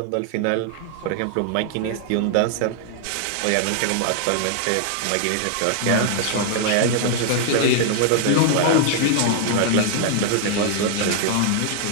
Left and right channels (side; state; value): both; different; correlation 0.00